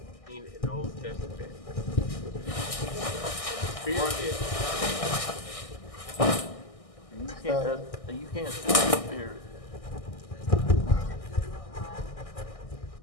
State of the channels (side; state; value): right; late; 1.6 ms